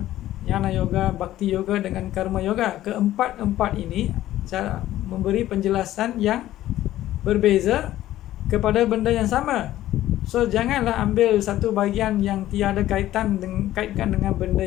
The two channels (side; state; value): right; quieter; 14.0 dB